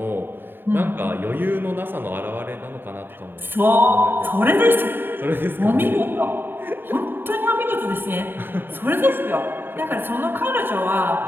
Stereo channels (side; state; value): left; late; 0.097 ms